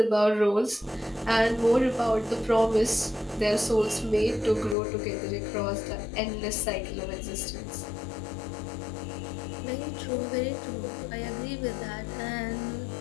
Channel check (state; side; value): drops out; right; at 4.8 s